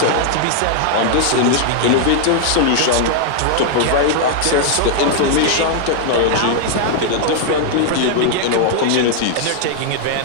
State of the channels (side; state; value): both; different; correlation -0.01